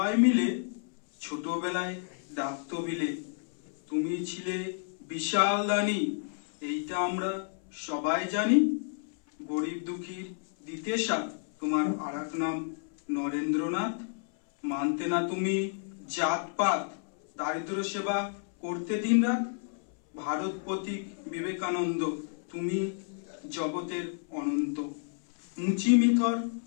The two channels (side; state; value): right; silent; 57 dB below the other